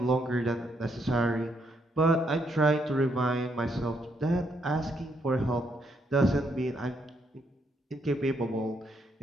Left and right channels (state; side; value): normal; both; correlation 0.75